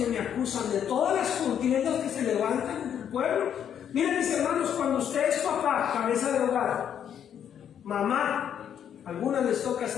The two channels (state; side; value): quieter; right; 9.0 dB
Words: me acusan, de todas las contiendas que se levantan en el pueblo. Miren, mis hermanos, cuando usted es papá, cabeza de hogar, mamá, a algunas les toca